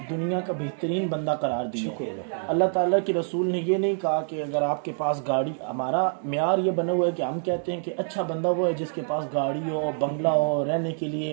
दुनिया का बेहतरीन बंदा करार दिया। अल्लाह ताला के रसूल ने ये नहीं कहा कि अगर आपके पास गाड़ी, हमारा म्यार ये बना हुआ है कि हम कहते हैं कि अच्छा बंदा वो है जिसके पास गाड़ी हो, बंगला हो, रहने के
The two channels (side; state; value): left; silent; digital silence